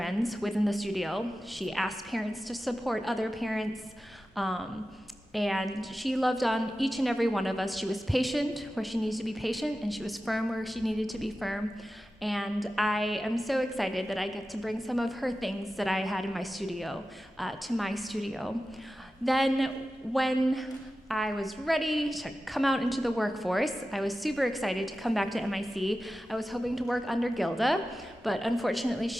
within the studio. She asked parents to support other parents. And she loved on each and every one of us. She was patient where she needs to be patient, and she was firm where she needed to be firm. And I am so excited that I get to bring some of her things that I had in my studio to my studio. Then when I was ready to come out into the workforce, I was super excited to come back to MIC. I was hoping to work under Gilda, but unfortunately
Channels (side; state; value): both; normal; correlation 0.94